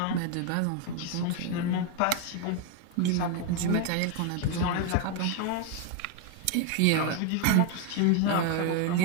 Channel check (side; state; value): both; different; correlation 0.01